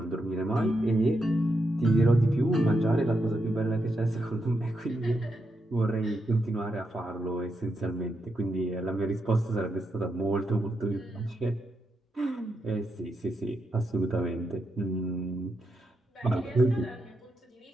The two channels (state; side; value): normal; both; correlation 0.83